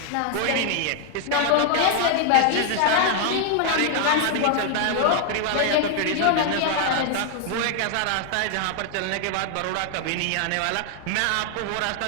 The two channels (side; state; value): both; different; correlation 0.00